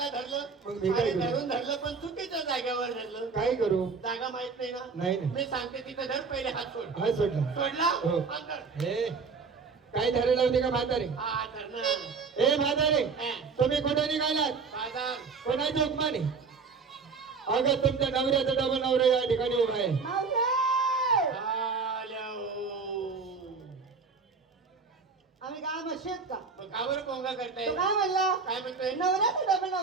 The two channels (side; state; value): left; quieter; 4.9 dB